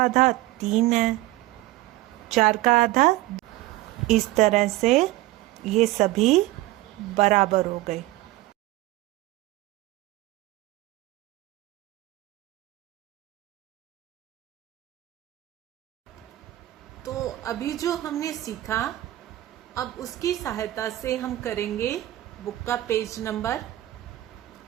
आधा 3 है, 4 का आधा। इस तरह से ये सभी बराबर हो गए। तो अभी जो हमने सीखा, अब उसकी सहायता से हम करेंगे बुक का पेज नंबर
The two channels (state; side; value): quieter; left; 16.9 dB